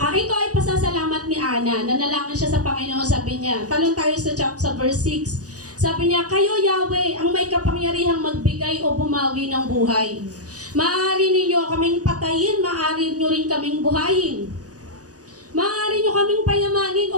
ay pasasalamat ni Ana. Nanalangin siya sa Panginoon, sabi niya. Talon tayo sa verse 6. Sabi niya, kayo Yahweh, ang may kapangyarihang magbigay o bumawi ng buhay. Maaari ninyo kaming patayin, maaari nyo rin kaming buhayin. Maaari nyo kaming payamanin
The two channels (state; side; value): late; left; 0.67 ms